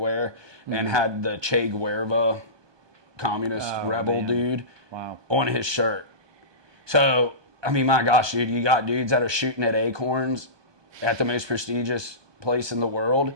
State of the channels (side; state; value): left; late; 1.2 ms